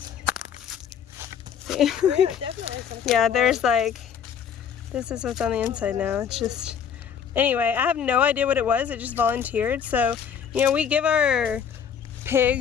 See? Yeah, definitely some kind Yeah, of there's like, this is what's on the inside now. It's just, anyway, I have no idea what it was. It just volunteered. So, you know, we give our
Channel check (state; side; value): quieter; right; 7.8 dB